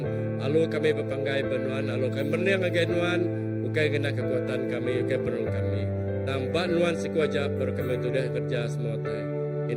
lalu kami berpanggai benuan lalu kami berniang lagi Nuan bukan kena kekuatan kami bukan penuh kami nampak Nuan si kuajar baru kami sudah kerja semua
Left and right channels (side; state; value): both; identical; correlation 1.00